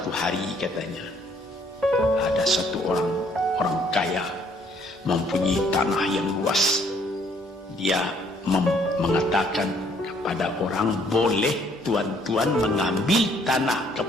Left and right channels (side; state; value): both; normal; correlation 0.64